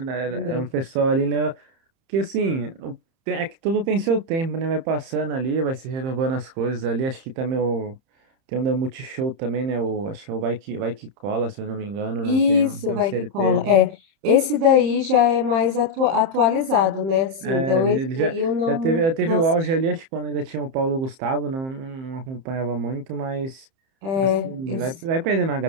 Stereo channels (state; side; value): late; left; 31 ms